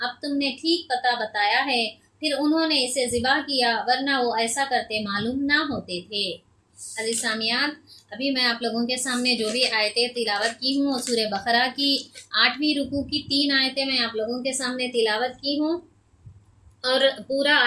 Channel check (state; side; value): identical; both; correlation 1.00